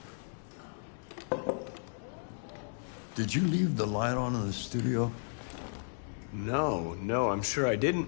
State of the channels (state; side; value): silent; right; digital silence